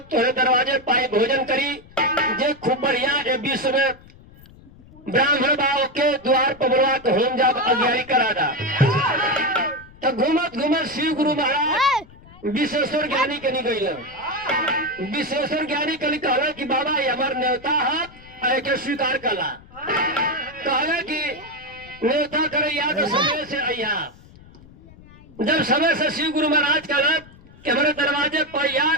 तोहरे दरवाजे पाए भोजन करी। जे खूब बढ़िया ए विश्व में ब्राह्मण बाव के द्वार पर बुलवा के होम जाप अज्ञानी करा दा। तो घूमत घूमत शिव गुरु महाराज विश्वेश्वर ज्ञानी के निकल। विश्वेश्वर ज्ञानी कल कहला कि बाबा ये हमार न्योता है के स्वीकार कला। कहला कि न्योता करे या तो समय से अया। जब समय से शिव गुरु महाराज कहला कि हमारे दरवाजे पर या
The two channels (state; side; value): noise; left; rumble, 23 dB below the sound